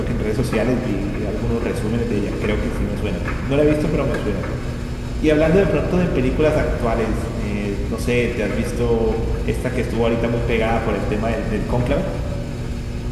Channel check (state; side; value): identical; both; correlation 1.00